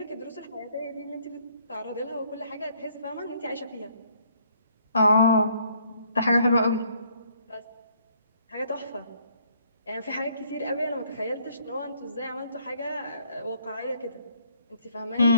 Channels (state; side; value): inverted; both; correlation -0.65